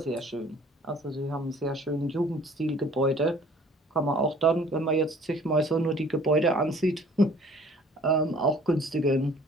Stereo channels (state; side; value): normal; both; correlation 0.53